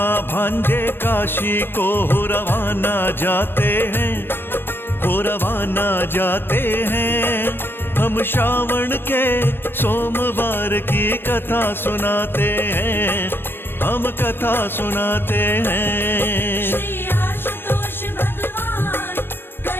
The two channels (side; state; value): right; late; 0.10 ms